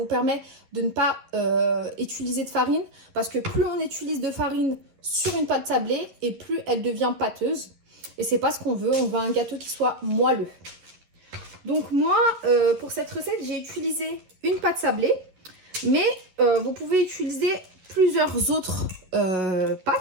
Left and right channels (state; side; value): late; left; 11 ms